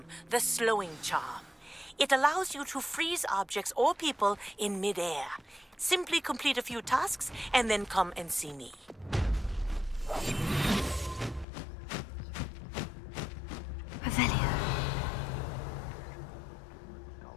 the slowing charm. It allows you to freeze objects or people in midair. Simply complete a few tasks and then come and see me. Revelio.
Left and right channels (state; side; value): drops out; right; at 11.5 s